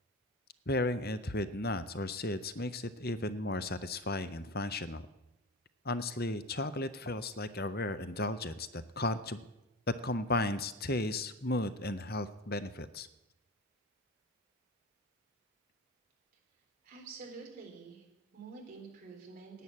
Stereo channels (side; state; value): both; normal; correlation 0.30